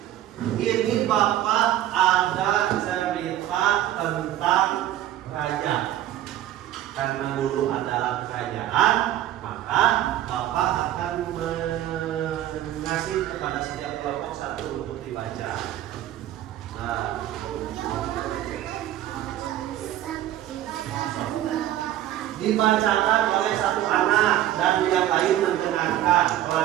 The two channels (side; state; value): left; quieter; 12.9 dB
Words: ini Bapak ada cerita tentang raja. Karena dulu adalah kerajaan, maka Bapak akan mengasih kepada setiap kelompok satu untuk dibaca. Nah, dibacakan oleh satu anak dan yang lain mendengarkan